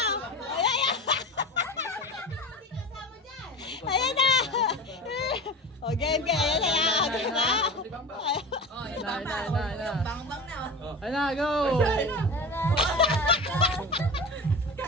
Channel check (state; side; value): normal; both; correlation 0.31